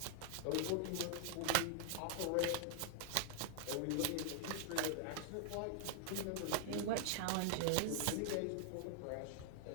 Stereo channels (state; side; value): different; both; correlation -0.01